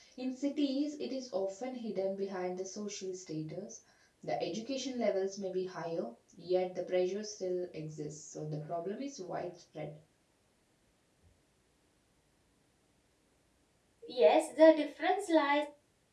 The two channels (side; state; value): both; identical; correlation 1.00